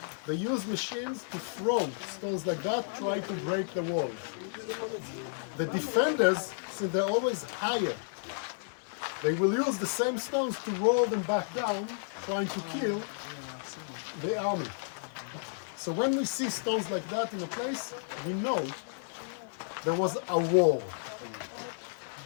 They use machines to throw stones like that, try to break the walls. The defenders, since they're always higher, they will use the same stones to roll them back down, trying to kill the army. So when we see stones like that in a place, we know there was a war.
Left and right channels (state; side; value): silent; right; digital silence